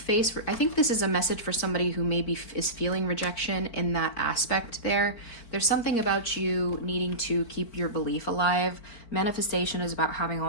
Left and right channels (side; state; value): right; late; 4.5 ms